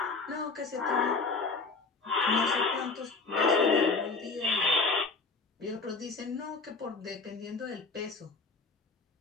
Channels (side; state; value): right; quieter; 4.1 dB